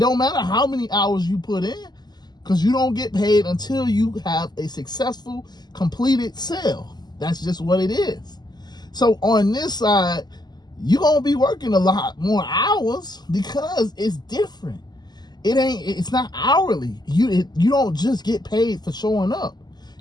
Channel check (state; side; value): late; right; 0.20 ms